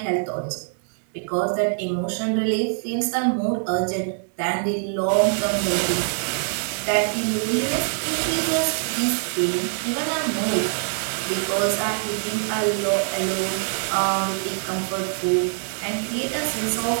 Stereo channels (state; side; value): silent; left; 63 dB below the other